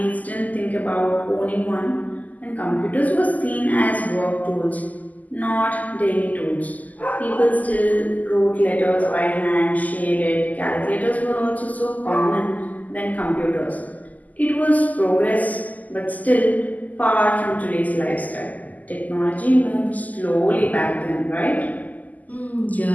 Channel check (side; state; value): right; late; 0.079 ms